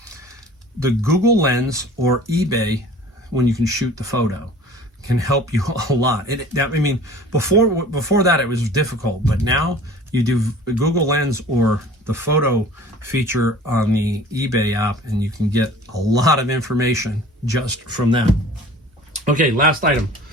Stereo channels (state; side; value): normal; both; correlation 0.45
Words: The Google Lens or eBay, when you can shoot the photo, can help you a lot. Before that, it was difficult, but now you do Google Lens or the photo feature on the eBay app, and you can get a lot of information just from that. Okay, last item.